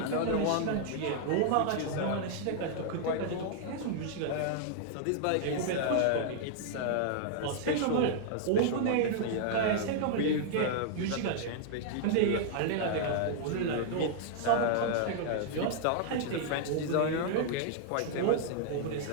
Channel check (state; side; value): different; both; correlation -0.01